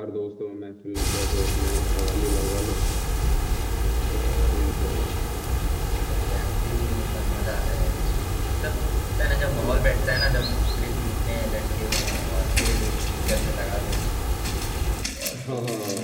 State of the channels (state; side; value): identical; both; correlation 1.00